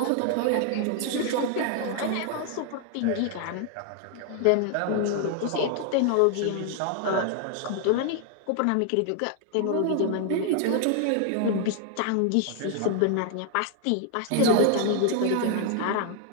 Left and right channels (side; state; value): both; different; correlation 0.00